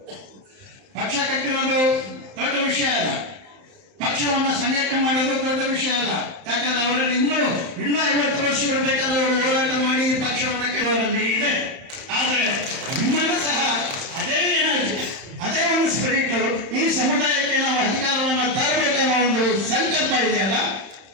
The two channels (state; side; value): late; left; 31 ms